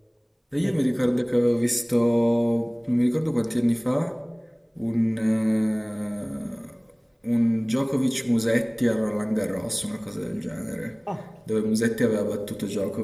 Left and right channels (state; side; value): identical; both; correlation 1.00